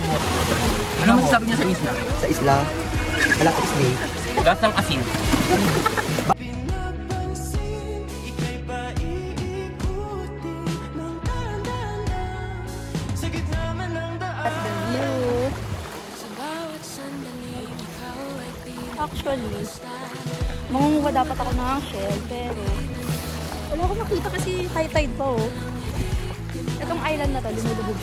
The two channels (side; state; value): both; identical; correlation 1.00